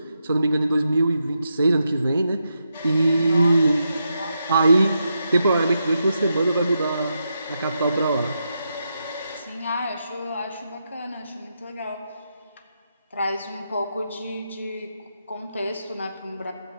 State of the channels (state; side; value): inverted; both; correlation -0.84